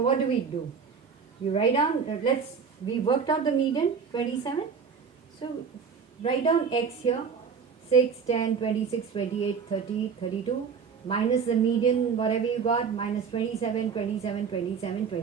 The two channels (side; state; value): left; quieter; 6.1 dB